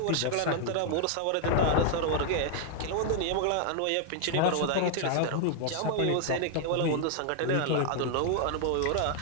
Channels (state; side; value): different; both; correlation 0.00